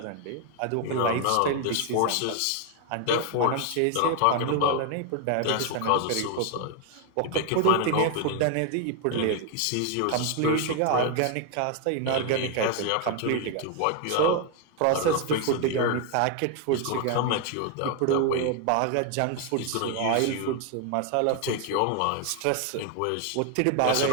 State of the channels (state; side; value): different; both; correlation 0.01